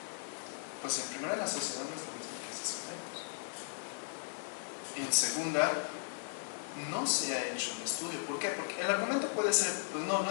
pues en primera, la sociedad no es la misma que hace 100 años. En segunda, no se ha hecho un estudio. ¿Por qué? Porque el argumento puede ser, pues no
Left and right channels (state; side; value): silent; right; digital silence